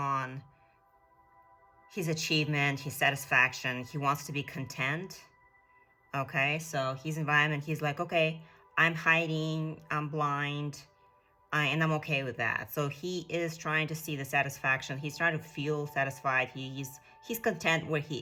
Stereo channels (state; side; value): identical; both; correlation 1.00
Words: his achievement, his satisfaction. He wants to be content. Okay, so his environment, he's like, okay, I'm hiding, I'm blind, and I'm okay with that. So he is trying to see the satisfaction. He's trying to feel satisfied. He's content where he